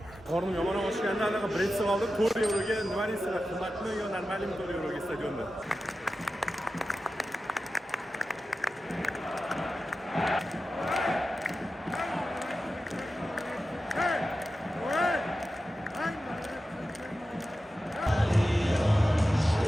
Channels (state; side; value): normal; both; correlation 0.93